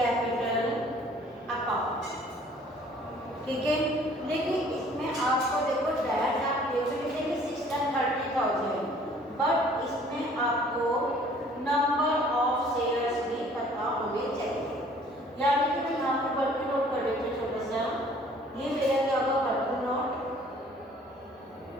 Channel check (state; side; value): normal; both; correlation 0.55